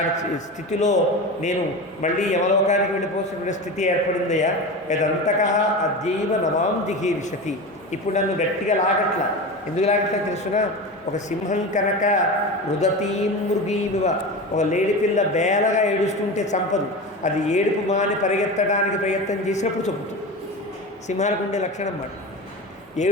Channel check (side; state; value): both; normal; correlation 0.26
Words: స్థితిలో నేను మళ్ళీ యమలోకానికి వెళ్ళిపోతున్న స్థితి ఏర్పడిందయ్యా. యదంతక అద్యైవ నమాం జిహీర్షతి. ఇప్పుడు నన్ను గట్టిగా లాగట్లా. ఎందుకు లాగట్లా తెలుసునా? ఒక సింహం కనుక రుదతీం మృగీమివ, ఒక లేడిపిల్ల బేలగా ఏడుస్తుంటే చంపదు, అది ఏడుపు మాని పరిగెత్తడానికి ప్రయత్నం చేసినప్పుడు చంపుతుంది. సింహానికి ఉండే లక్షణం మాట.